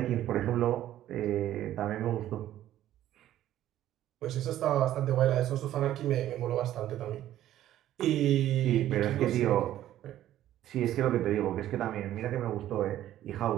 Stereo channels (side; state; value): left; quieter; 12.8 dB